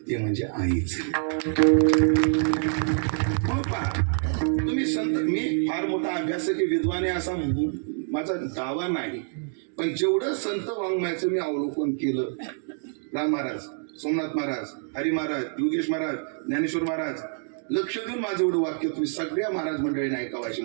ते म्हणजे आईच. हो पहा, तुम्ही संत, मी फार मोठा अभ्यासक विद्वान आहे असा माझा दावा नाही, पण जेवढं संत वाङ्मयाचं मी अवलोकन केलं, राम महाराज, सोमनाथ महाराज, हरी महाराज, योगेश महाराज, ज्ञानेश्वर महाराज, लक्ष देऊन माझं एवढं वाक्य तुम्ही सगळ्या महाराज मंडळीने ऐकावं अशी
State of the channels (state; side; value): silent; left; 61 dB below the other